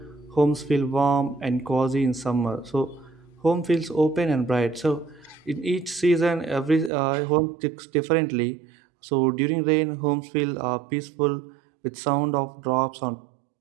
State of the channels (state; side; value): drops out; left; at 6.9 s